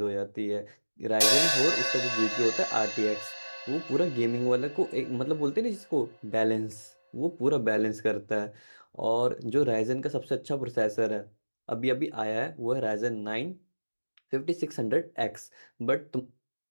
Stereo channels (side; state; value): both; inverted; correlation -1.00